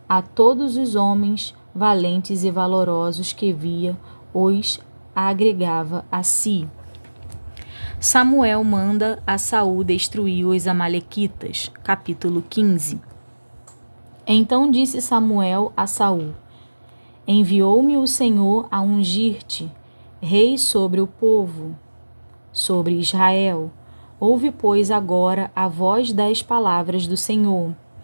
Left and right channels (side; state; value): both; inverted; correlation -1.00